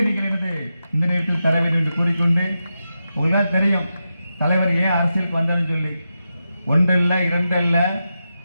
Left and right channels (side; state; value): both; inverted; correlation -0.89